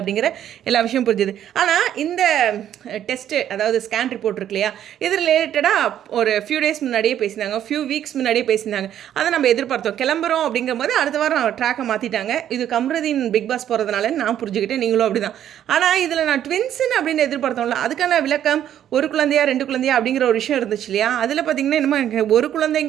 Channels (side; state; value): left; quieter; 10.7 dB